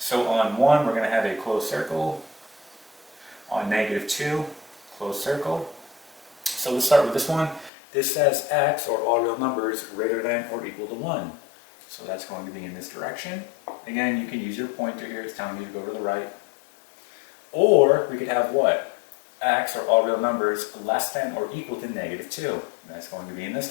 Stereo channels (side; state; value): right; drops out; at 7.7 s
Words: on 1, we're going to have a closed circle. On negative 2, closed circle. So let's start with this one. This says x, or all real numbers, greater than or equal to 1. So that's going to be in this direction. Again, you can use your pointer here. It's telling you to go to the right. Or we could have what? X, or all real numbers, less than or equal to negative 2. And that's going to be in this